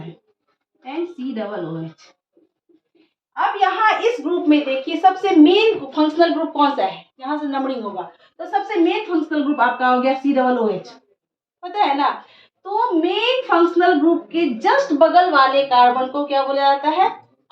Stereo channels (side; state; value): both; identical; correlation 1.00